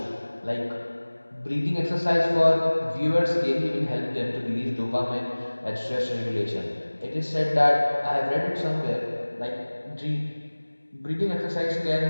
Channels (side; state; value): both; inverted; correlation -1.00